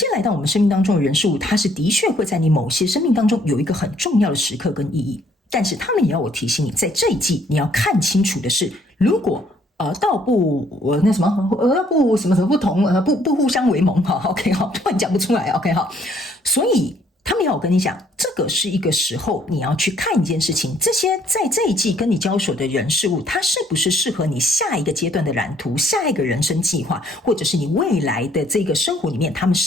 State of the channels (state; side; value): normal; both; correlation 0.64